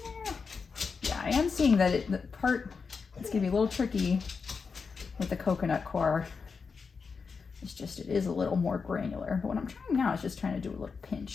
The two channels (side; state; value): right; quieter; 5.2 dB